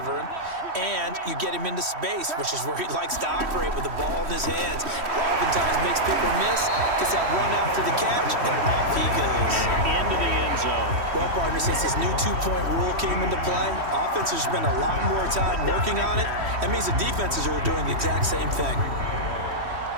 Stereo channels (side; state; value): left; late; 3.1 ms